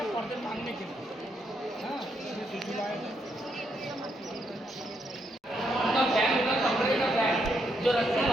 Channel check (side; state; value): both; normal; correlation 0.77